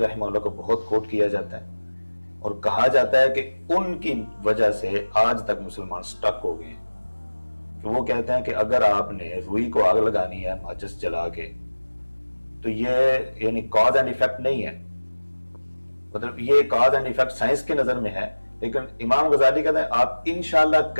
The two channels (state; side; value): inverted; both; correlation -1.00